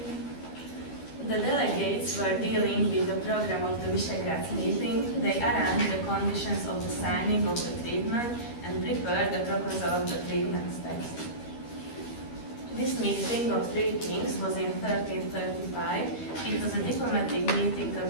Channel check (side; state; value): right; late; 12 ms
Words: The delegates were dealing with the program of the Visegrad meeting. They arranged the conditions of the signing of the treatment and prepared the proposal of the treatment text. This meeting of three kings was in 1335. It was a diplomatic meeting